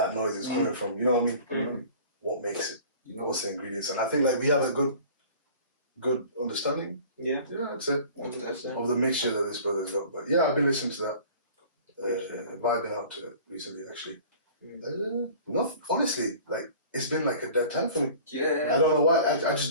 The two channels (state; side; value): inverted; both; correlation -0.45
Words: noise is coming from. You know what I mean? Mm-hmm. What makes it? What's the ingredients? And I think, like, we have a good understanding. Yeah. Yeah, that's it. 100%. Of the mixture that this brother's got. But yeah, I've been listening to that. Vibing out to it recently, actually. Honestly, like, it's been like a dead time for me. Yeah. I don't know why. I just